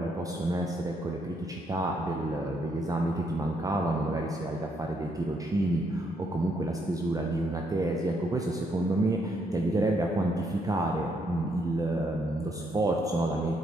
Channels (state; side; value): normal; both; correlation 0.74